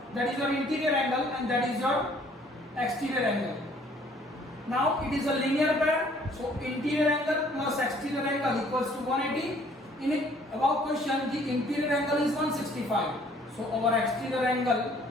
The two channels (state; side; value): normal; both; correlation 0.59